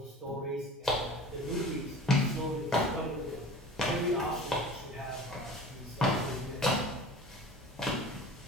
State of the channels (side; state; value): both; normal; correlation 0.39